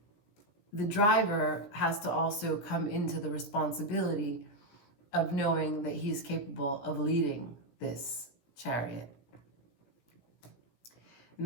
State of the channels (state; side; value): late; right; 17 ms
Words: the driver has to also come into the responsibility of knowing that he's capable of leading this chariot. And